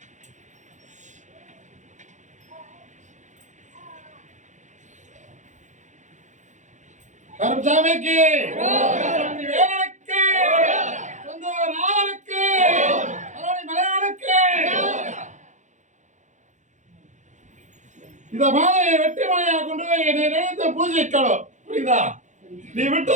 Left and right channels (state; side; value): late; left; 0.35 ms